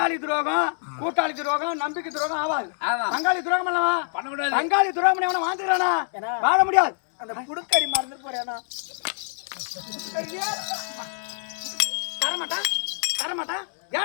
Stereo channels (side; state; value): right; silent; 61 dB below the other